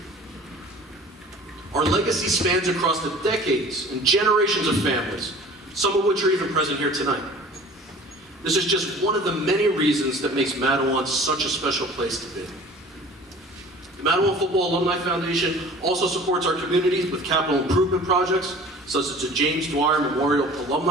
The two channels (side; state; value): both; normal; correlation 0.45